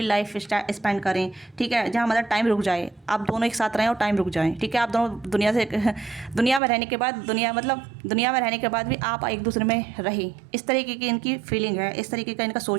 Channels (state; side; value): drops out; left; at 6.6 s